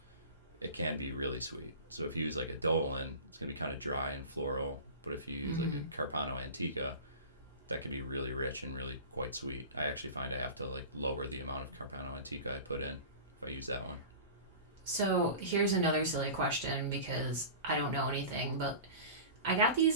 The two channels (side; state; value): both; inverted; correlation -0.35